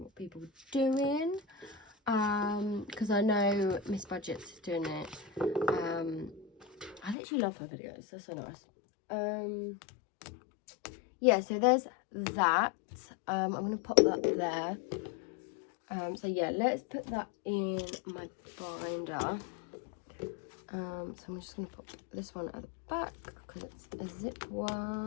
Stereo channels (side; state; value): right; drops out; at 7.2 s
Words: what people were doing, because I know Miss Budget's is doing it. I literally love her videos, they're so nice. Yeah, so there's that. I'm going to pop that there. So yeah, let's put that in my binder. So I'm just going to put this one at the back because it's a zip